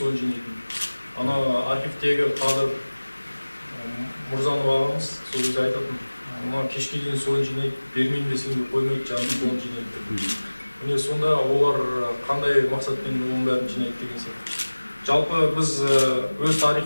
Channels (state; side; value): inverted; both; correlation -1.00